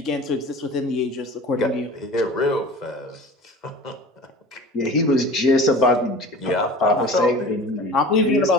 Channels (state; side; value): normal; both; correlation 0.39